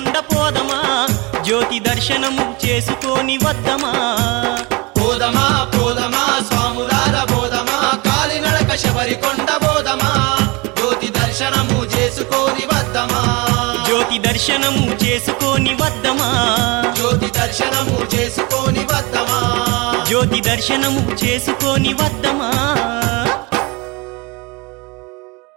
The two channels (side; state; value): left; quieter; 26.5 dB